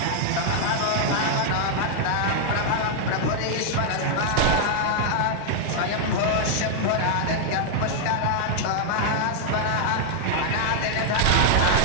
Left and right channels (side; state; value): both; different; correlation -0.01